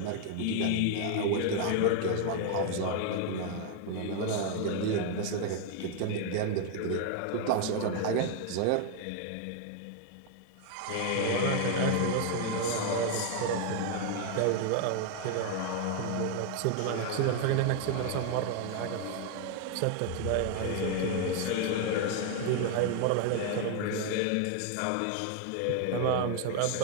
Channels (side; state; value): both; different; correlation 0.00